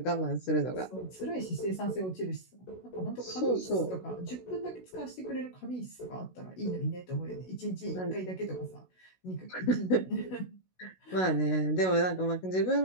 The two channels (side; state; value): right; late; 16 ms